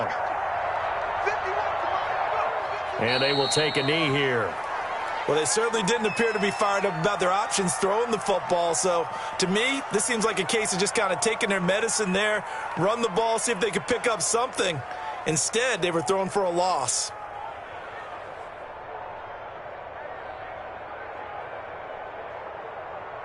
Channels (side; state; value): both; identical; correlation 1.00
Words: And they will take a knee here. Well, they certainly didn't appear to be fired up about their options throwing the football. So, to me, this seems like a case of just kind of taking their medicine there, run the ball, see if they could pick up something. Instead, they were throwing for a loss.